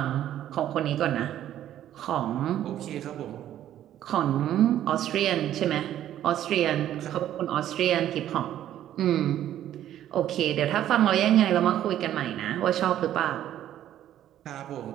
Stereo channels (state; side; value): quieter; left; 11.8 dB